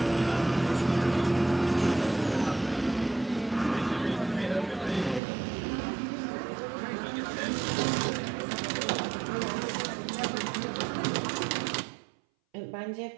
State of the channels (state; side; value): drops out; left; at 5.2 s